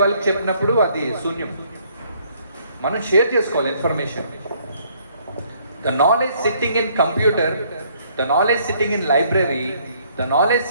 వాళ్ళకి చెప్పినప్పుడు అది శూన్యం. మనం షేర్ చేసుకోవాలి information. The knowledge sitting in computer, the knowledge sitting in library, the knowledge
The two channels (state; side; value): inverted; both; correlation -0.65